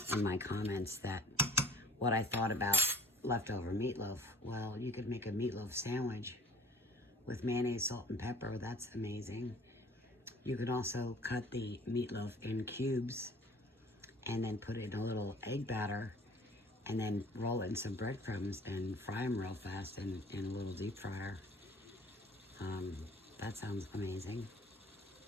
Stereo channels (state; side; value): normal; both; correlation 0.48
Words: my comments what I thought about leftover meatloaf. Well, you could make a meatloaf sandwich with mayonnaise, salt, and pepper. That's amazing. You could also cut the meatloaf in cubes and then put it in a little egg batter, and then roll it in some breadcrumbs and fry them real fast in a little deep fryer. That sounds amazing.